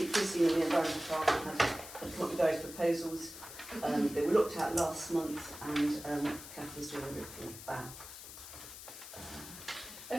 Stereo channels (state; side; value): noise; left; hiss, 13 dB below the sound